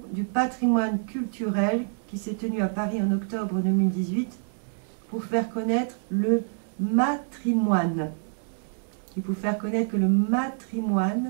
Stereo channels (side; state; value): left; silent; digital silence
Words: du patrimoine culturel qui s'est tenu à Paris en octobre 2018 pour faire connaître le matrimoine. Et pour faire connaître que le